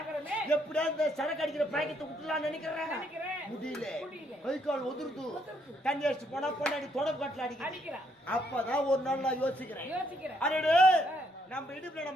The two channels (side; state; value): both; normal; correlation 0.72